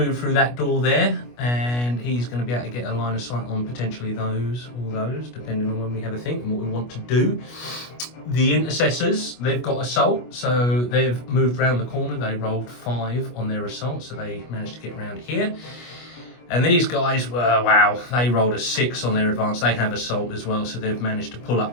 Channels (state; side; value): late; right; 25 ms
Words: through that door there, and he's going to be able to get a line of sight on potentially those or those, depending on when we have a think and what we want to do. The Intercessors, they've got assault, so they've moved around the corner. They rolled 5 on their assault, so they managed to get around here. And these guys were, wow, they rolled a 6 on their advance. They have assault as well, so they've managed to pull